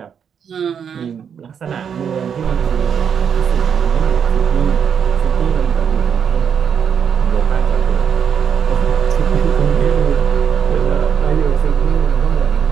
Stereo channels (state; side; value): quieter; left; 7.5 dB